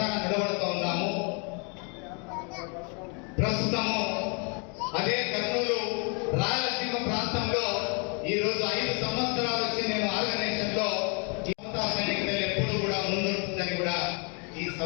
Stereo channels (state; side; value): quieter; right; 35.4 dB